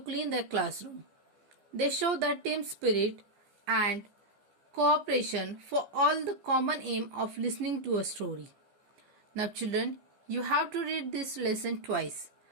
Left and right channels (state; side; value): late; left; 14 ms